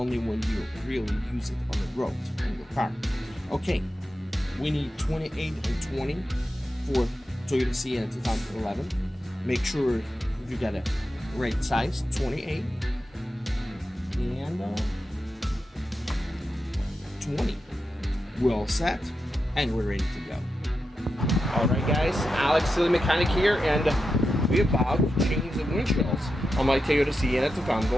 when you really use it on the road on your car. Okay, we need 28 and 20 for Toyota Sienna 2011. Make sure you got a right size, 28 and 20. We're all set and we're ready to go. Alright guys, Alex, the mechanic here, and we're about to change the windshields on my Toyota Sienna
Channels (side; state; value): both; normal; correlation 0.89